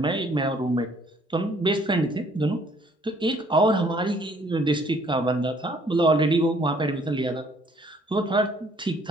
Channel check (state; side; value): normal; both; correlation 0.61